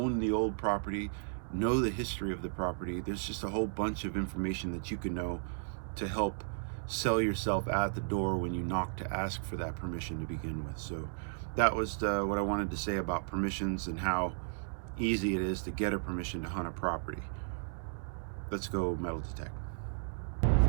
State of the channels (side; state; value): left; silent; digital silence